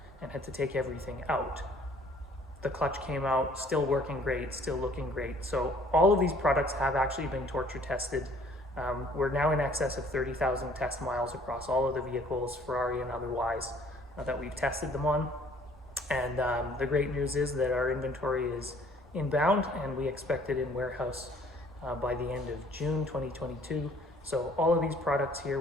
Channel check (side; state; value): both; normal; correlation 0.57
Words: and had to take everything out. The clutch came out still working great, still looking great. So all of these products have actually been torture tested. We're now in excess of 30,000 test miles across all of the vehicles, Ferrari and otherwise, that we've tested them on. And the great news is that our inventory is inbound, and we expect it in warehouse by the end of June 2022. So all of these products here